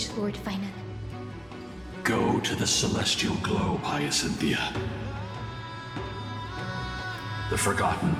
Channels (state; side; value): noise; right; hum, 28 dB below the sound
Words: Lord Finan. Go to the celestial globe, Hyacinthia. The forgotten